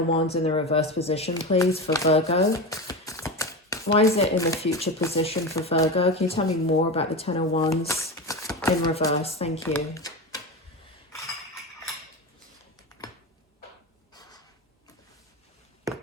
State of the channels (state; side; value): normal; both; correlation 0.22